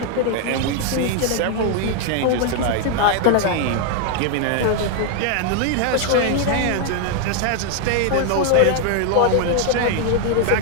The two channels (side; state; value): both; different; correlation 0.00